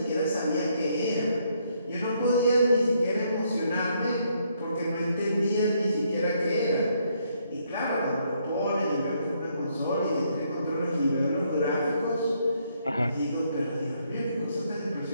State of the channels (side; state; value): both; inverted; correlation -0.72